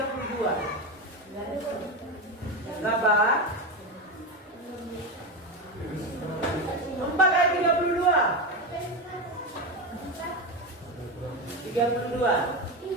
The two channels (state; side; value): normal; both; correlation 0.16